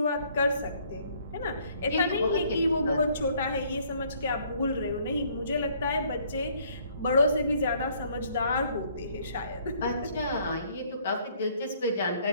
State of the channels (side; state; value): both; inverted; correlation -0.63